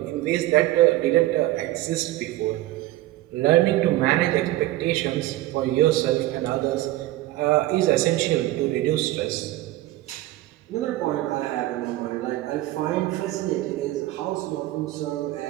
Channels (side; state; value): left; quieter; 16.3 dB